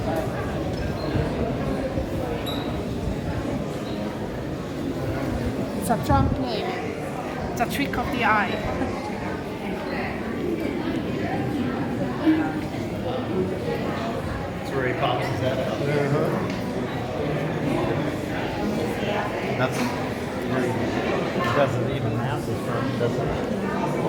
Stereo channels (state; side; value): identical; both; correlation 1.00